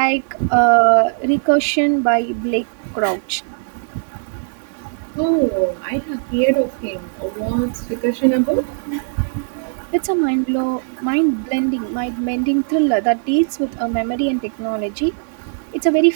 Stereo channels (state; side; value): silent; left; digital silence